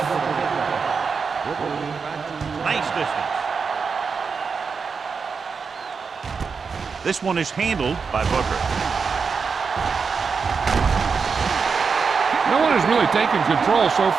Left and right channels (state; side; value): quieter; left; 5.4 dB